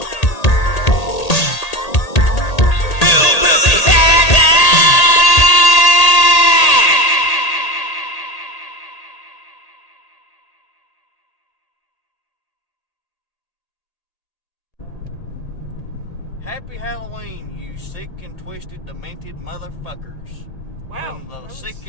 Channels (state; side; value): late; right; 1.8 ms